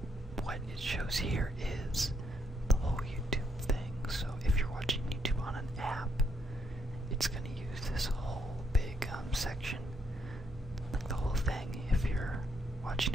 what it shows here is the whole YouTube thing. So, if you're watching YouTube on an app, it's going to use this whole big section, like the whole thing. If you're watching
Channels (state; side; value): normal; both; correlation 0.74